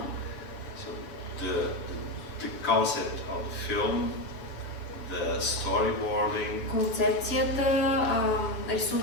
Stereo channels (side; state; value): right; late; 7.0 ms